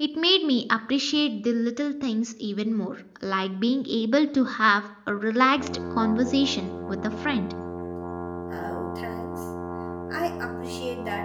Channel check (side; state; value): both; identical; correlation 1.00